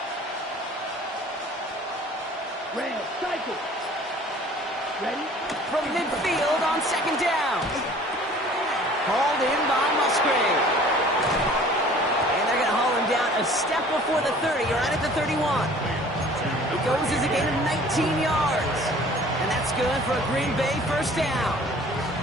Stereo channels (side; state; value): both; normal; correlation 0.50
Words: Red, cycle. Ready? From midfield on 2nd down. Hauled in by Musgrave. And they're going to haul him down a step before the 30, right at the 31. It goes as a gain of 19 yards. And that's good for a Green Bay 1st down.